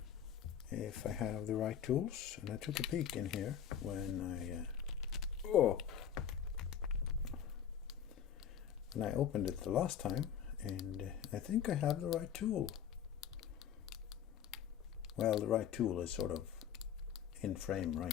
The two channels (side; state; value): right; quieter; 9.0 dB